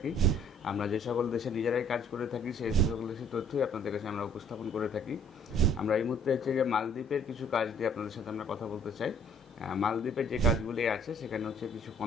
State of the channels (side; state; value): both; normal; correlation 0.59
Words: আমরা যে সকল দেশে নিজেরাই কাজ করে থাকি সেই সকল দেশের তথ্যই আপনাদের কাছে আমরা উপস্থাপন করে থাকি। আমরা এই মুহূর্তে হচ্ছে যে মালদ্বীপের কিছু কাজ দিয়ে আপনাদের সাথে আমরা কথা বলতে চাই। মালদ্বীপের যে কাজগুলি আছে সেখানে হচ্ছে কিছু